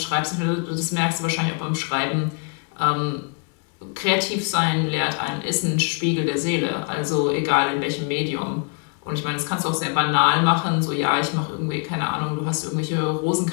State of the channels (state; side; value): quieter; right; 40.0 dB